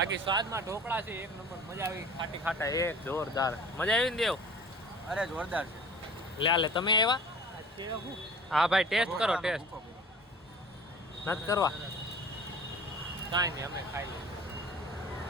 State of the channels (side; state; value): both; normal; correlation 0.43